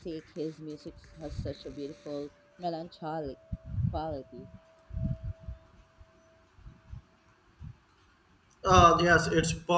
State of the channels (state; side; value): identical; both; correlation 1.00